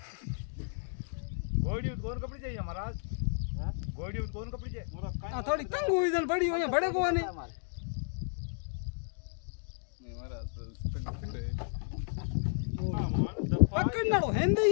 गोड़ी कौन कपड़ी चाहिए महाराज हां गोड़ी कौन कपड़ी चाहिए थोड़ी तंग हुई जन बड़ी हो यहाँ बड़े को नहीं महाराज पकड़ना रो हेंदे ही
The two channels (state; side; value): silent; right; digital silence